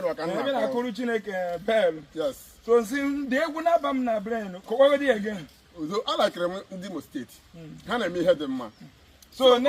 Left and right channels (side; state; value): both; identical; correlation 1.00